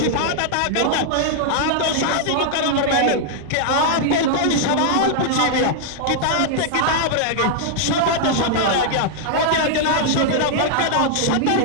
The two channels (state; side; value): different; both; correlation -0.01